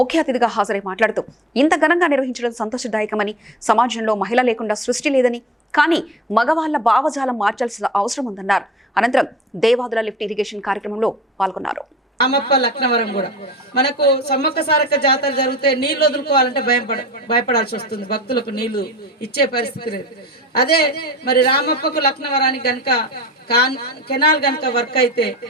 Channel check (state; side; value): normal; both; correlation 0.41